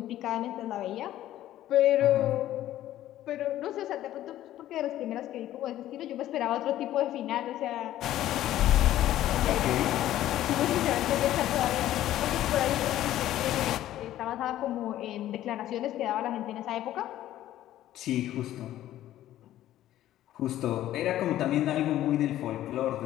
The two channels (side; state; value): right; quieter; 13.3 dB